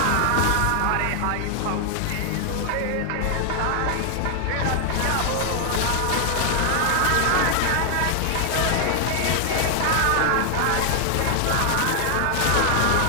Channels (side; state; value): both; different; correlation 0.00